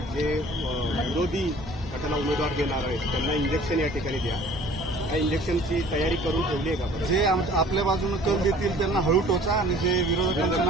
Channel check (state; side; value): normal; both; correlation 0.50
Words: जे विरोधी गटाला उमेदवार देणार आहेत त्यांना इंजेक्शन या ठिकाणी द्या. या इंजेक्शनची तयारी करून ठेवली आहे का? जे आपल्या बाजूने कल देतील त्यांना हळू टोचा आणि जे विरोधकांचं